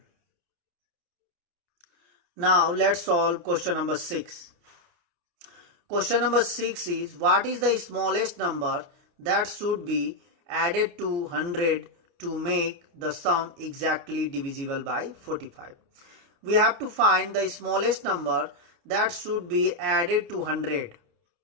Now let's solve question number 6. Question number 6 is what is the smallest number that should be added to 100 to make the sum exactly divisible by 45. We have to find the smallest number that should be added to 100.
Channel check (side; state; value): left; late; 29 ms